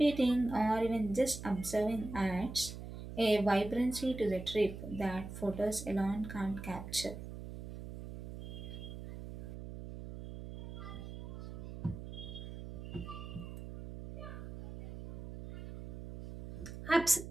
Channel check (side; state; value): right; noise; hum, 10 dB below the sound